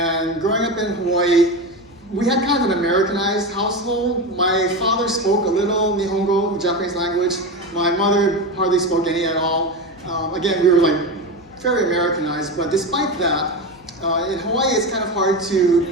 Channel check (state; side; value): noise; left; hum, 26 dB below the sound